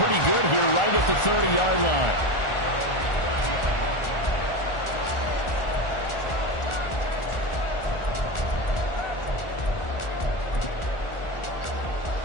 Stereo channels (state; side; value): late; right; 1.4 ms